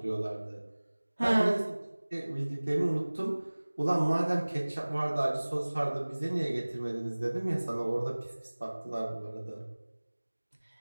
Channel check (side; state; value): both; inverted; correlation -1.00